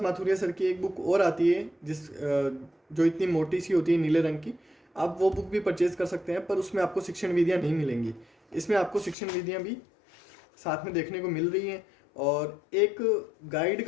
माथुरिया सर की एक बुक और आती है जो इतनी मोटी सी होती है, नीले रंग की। आप वो बुक भी परचेज़ कर सकते हैं, पर उसमें आपको शिक्षण विधियाँ नहीं मिलेंगी। इसमें आपको शिक्षण विधियाँ भी साथ में देखने को मिल रही हैं। और एक गाइड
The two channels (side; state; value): right; drops out; at 9.2 s